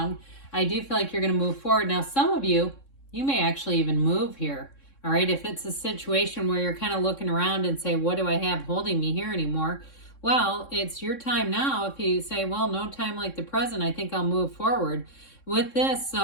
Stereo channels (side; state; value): right; late; 3.6 ms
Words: I do feel like you're going to move forward. Now, some of you may actually even move here. All right. If it's a situation where you're kind of looking around and say, what do I have holding me here anymore? Well, it's your time now. If you say, well, no time like the present, I think I'll move forward with this.